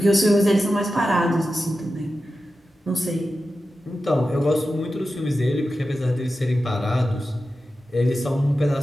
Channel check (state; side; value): normal; both; correlation 0.92